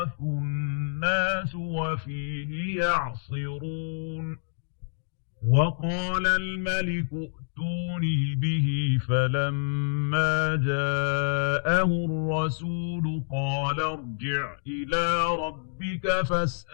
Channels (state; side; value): silent; right; digital silence